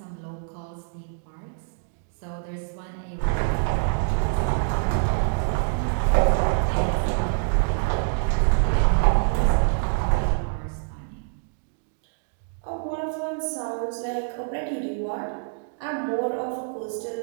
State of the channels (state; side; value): silent; left; digital silence